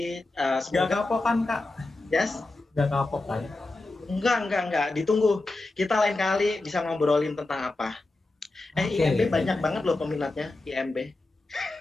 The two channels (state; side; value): quieter; right; 3.0 dB